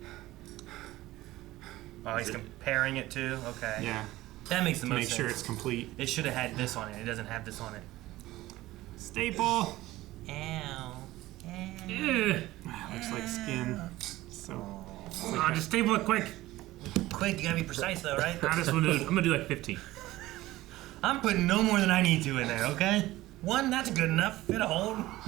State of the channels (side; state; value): left; quieter; 17.1 dB